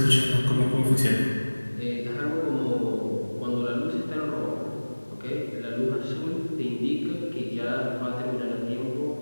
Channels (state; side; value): inverted; both; correlation -1.00